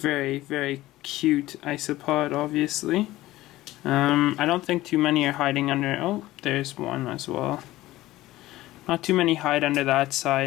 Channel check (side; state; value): right; quieter; 16.7 dB